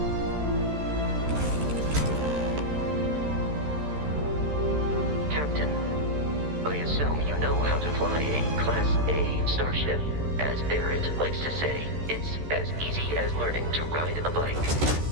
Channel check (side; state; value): left; late; 13 ms